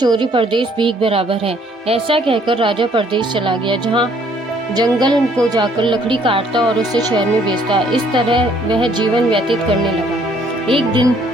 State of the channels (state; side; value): normal; both; correlation 0.63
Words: परदेश भीख बराबर है। ऐसा कहकर राजा परदेश चला गया, जहाँ जंगल को जाकर लकड़ी काटता और उसे शहर में बेचता। इस तरह वह जीवन व्यतीत करने लगा। एक दिन